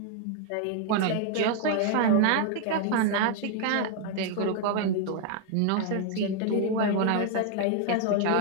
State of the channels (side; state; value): both; different; correlation 0.00